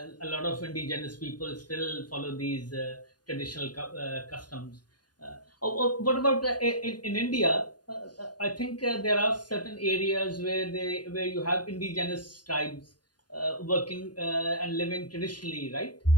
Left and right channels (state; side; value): late; right; 0.70 ms